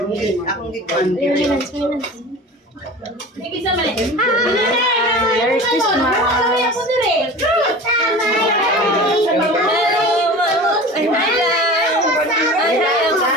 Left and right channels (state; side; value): normal; both; correlation 0.36